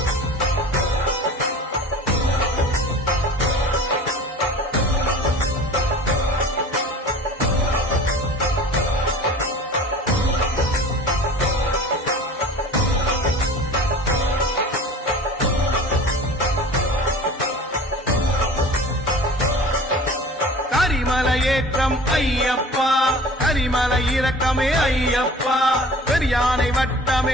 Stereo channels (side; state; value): both; normal; correlation 0.41